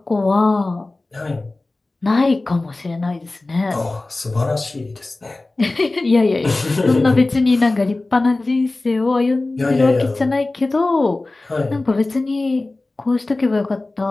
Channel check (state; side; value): quieter; right; 3.0 dB